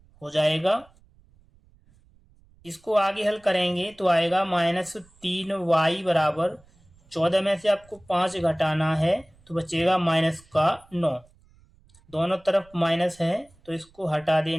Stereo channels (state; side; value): noise; right; rumble, 30 dB below the sound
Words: हो जाएगा। इसको आगे हल करेंगे तो आएगा -3y = 14 में से आपको 5 घटाना है तो बचेगा माइनस का 9। दोनों तरफ माइनस है तो इसको हटा